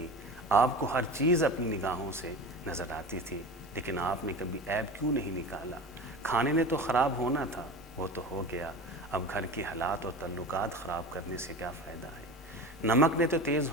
آپ کو ہر چیز اپنی نگاہوں سے نظر آتی تھی، لیکن آپ نے کبھی عیب کیوں نہیں نکالا؟ کھانے نے تو خراب ہونا تھا، وہ تو ہو گیا، اب گھر کے حالات اور تعلقات خراب کرنے سے کیا فائدہ ہے؟ نمک نے تو تیز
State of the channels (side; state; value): right; noise; rumble, 25 dB below the sound